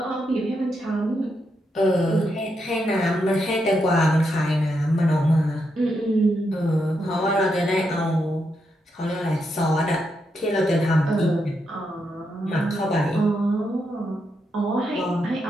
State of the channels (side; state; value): both; normal; correlation 0.82